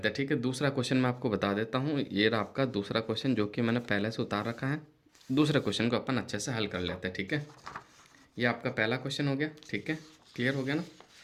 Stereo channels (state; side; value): identical; both; correlation 1.00